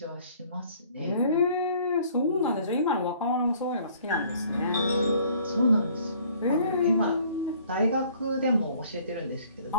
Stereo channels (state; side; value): inverted; both; correlation -0.57